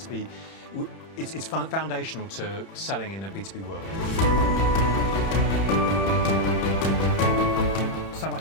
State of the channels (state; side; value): late; right; 31 ms